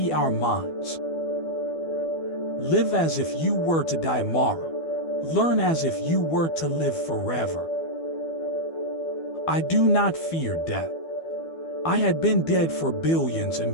our minds. Live as if you were to die tomorrow. Learn as if you were to live forever. I do not fear death. I had been dead for billions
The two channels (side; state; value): right; late; 12 ms